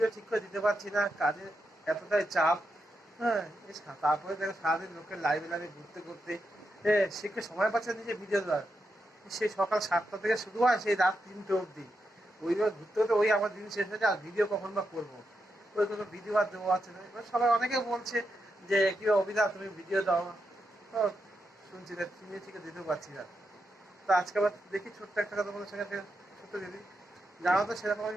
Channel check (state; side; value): normal; both; correlation 0.85